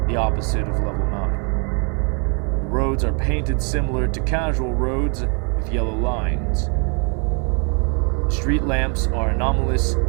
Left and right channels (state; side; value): quieter; left; 36.7 dB